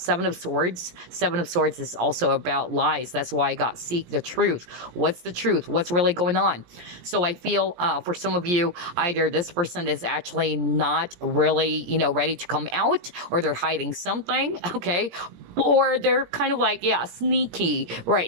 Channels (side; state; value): left; late; 17 ms